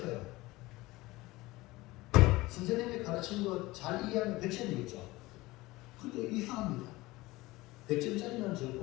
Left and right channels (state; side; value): quieter; right; 20.0 dB